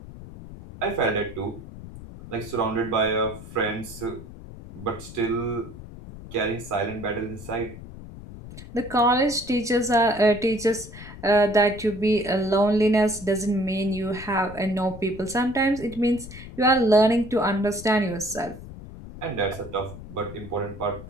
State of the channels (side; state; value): left; noise; rumble, 14 dB below the sound